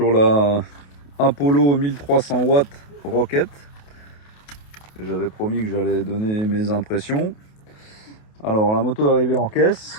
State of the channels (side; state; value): right; late; 28 ms